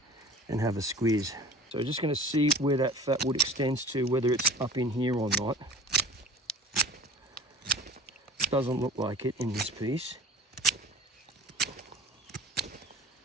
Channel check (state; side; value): normal; both; correlation 0.42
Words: and have a squeeze. So we're just going to see where that fat wood extends to, whether it's up in here or not. Doesn't look like it in this piece.